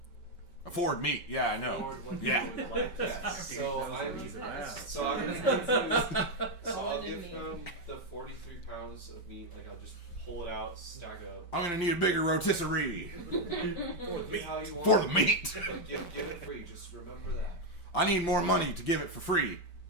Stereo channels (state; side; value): late; right; 5.2 ms